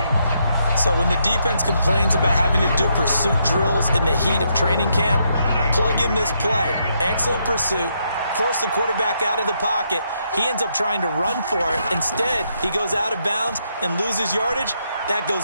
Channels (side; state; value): both; inverted; correlation -0.77